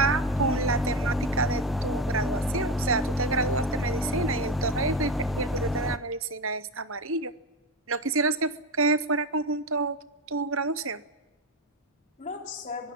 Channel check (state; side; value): normal; both; correlation 0.19